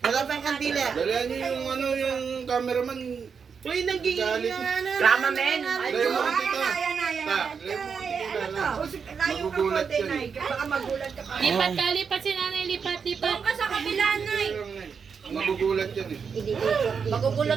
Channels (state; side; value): quieter; left; 6.1 dB